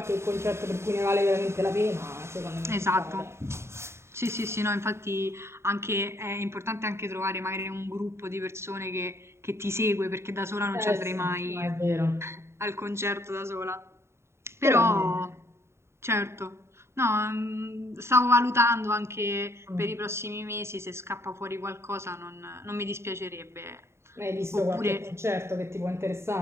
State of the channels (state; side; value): late; left; 0.13 ms